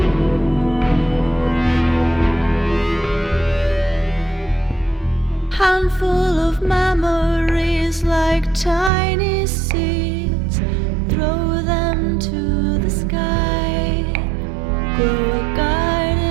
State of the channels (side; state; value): left; drops out; at 8.9 s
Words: Handful of memories like tiny seeds, throw them to the sky, grow a